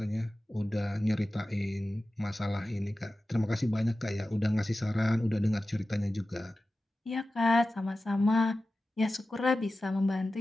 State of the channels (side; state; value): both; normal; correlation 0.94